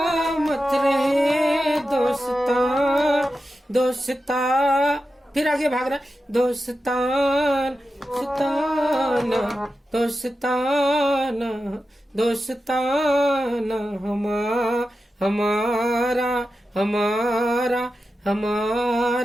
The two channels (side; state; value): both; normal; correlation 0.91